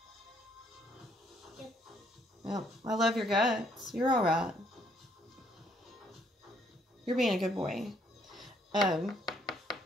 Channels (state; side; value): normal; both; correlation 0.68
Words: Yep. I love your guts. You're alright. You're being a good boy.